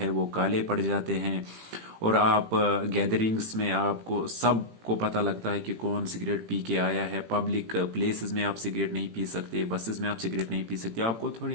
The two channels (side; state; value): left; late; 18 ms